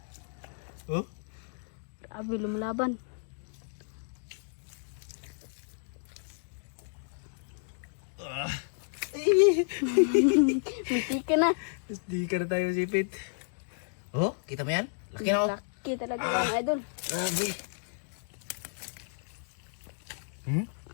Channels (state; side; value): silent; right; digital silence